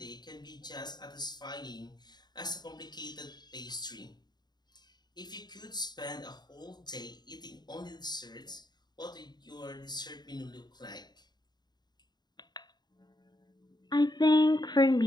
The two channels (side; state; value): right; late; 0.20 ms